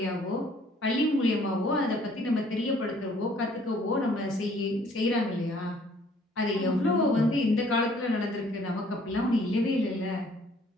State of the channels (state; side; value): normal; both; correlation 0.59